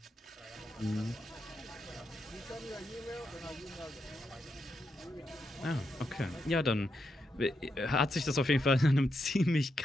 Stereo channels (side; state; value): both; normal; correlation 0.83